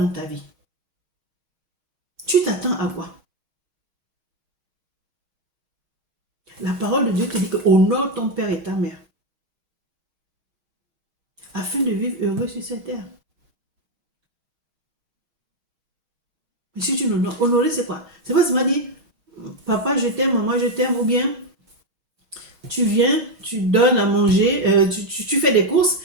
ta vie? Tu t'attends à quoi? La parole de Dieu te dit que honore ton père et ta mère, afin de vivre heureux sur cette terre. Mais si tu n'honores, honorer c'est quoi? C'est pas seulement dire, papa je t'aime, maman je t'aime, ou bien tu viens, tu donnes à manger, tu fais des courses,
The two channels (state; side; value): late; left; 6.3 ms